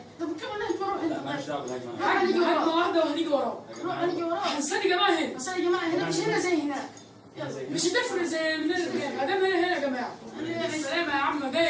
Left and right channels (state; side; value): identical; both; correlation 1.00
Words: طب كم الهجمه روح لا انت. ماليش دعوه بالهجمه. هجمه واحده وهنيجي وراه. يا روح جماعه هنيجي وراه. استني يا جماعه هنا. بس يا جماعه هنا مش هنا زي هناك. زي مش هتفرق زي من ما دام هنا يا جماعه. السلام يا عم، ده